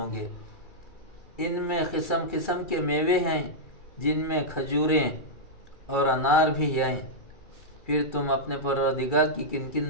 گے؟ ان میں قسم قسم کے میوے ہیں جن میں کھجوریں اور انار بھی ہیں۔ پھر تم اپنے پروردگار کی کن کن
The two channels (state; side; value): late; right; 2.3 ms